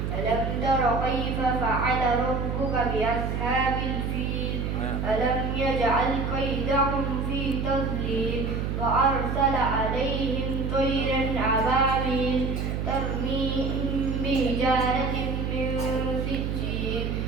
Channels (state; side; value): noise; right; hum, 1 dB below the sound